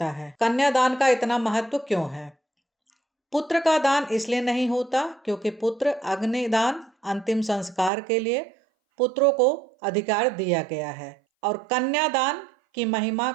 है? कन्यादान का इतना महत्व क्यों है? पुत्र का दान इसलिए नहीं होता क्योंकि पुत्र अग्निदान अंतिम संस्कार के लिए पुत्रों को अधिकार दिया गया है और कन्यादान की महिमा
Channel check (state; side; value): drops out; left; at 7.9 s